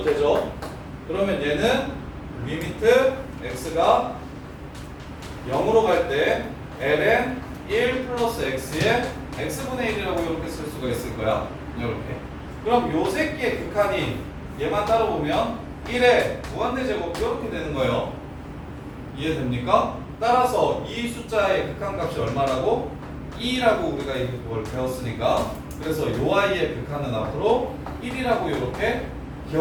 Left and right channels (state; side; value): identical; both; correlation 1.00